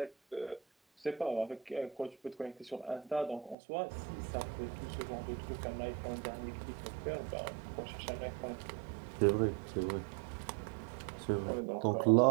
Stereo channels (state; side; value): drops out; left; at 3.6 s